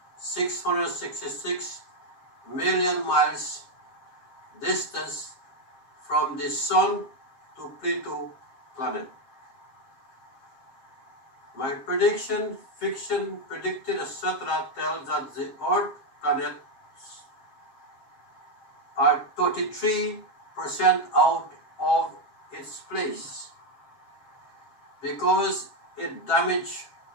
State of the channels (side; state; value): right; late; 7.4 ms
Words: million miles distance from the Sun to Pluto planet. My prediction, fiction, predicted, etc. tells that the Earth planets are 33% out of its place because it damaged